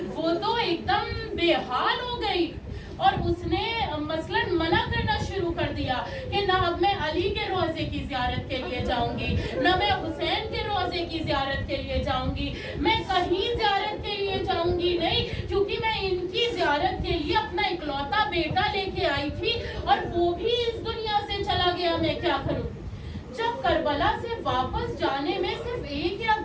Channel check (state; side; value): identical; both; correlation 1.00